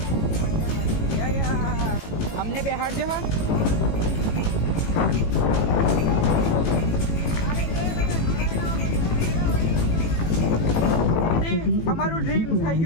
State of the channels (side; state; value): right; late; 18 ms